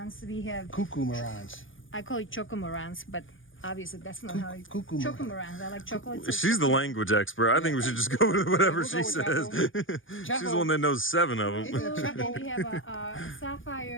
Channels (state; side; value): late; right; 0.58 ms